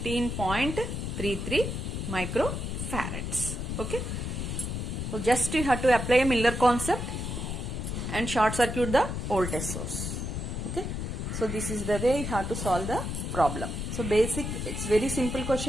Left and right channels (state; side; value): noise; left; rumble, 3 dB below the sound